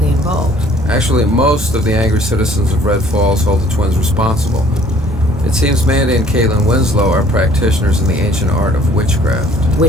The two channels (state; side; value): normal; both; correlation 0.56